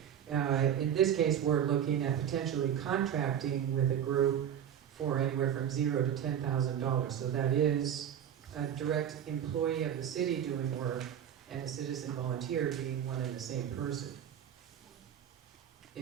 In this case, we're looking at potentially contracting with a group for anywhere from $0 to $10,000. So that is a direct employee of the city doing work and a citizen volunteer being one and the same person.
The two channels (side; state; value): left; quieter; 9.5 dB